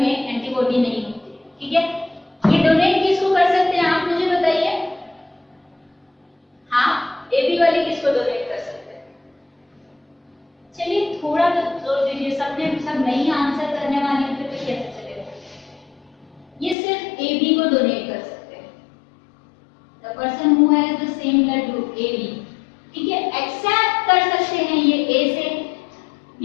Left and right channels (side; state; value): right; drops out; at 16.8 s